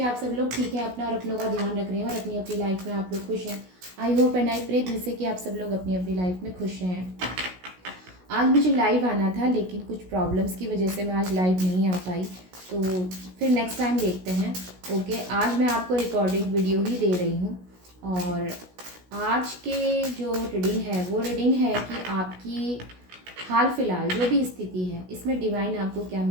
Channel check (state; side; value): late; left; 16 ms